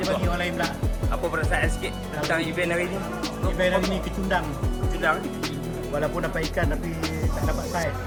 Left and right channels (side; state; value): both; identical; correlation 1.00